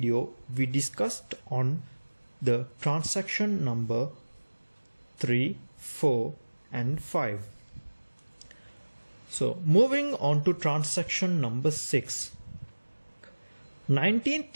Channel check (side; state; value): both; inverted; correlation -1.00